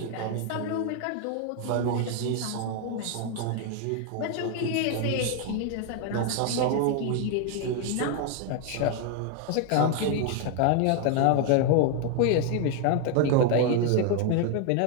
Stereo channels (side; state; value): both; different; correlation 0.01